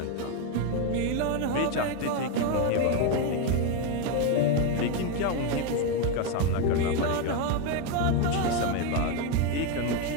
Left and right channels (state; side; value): different; both; correlation 0.02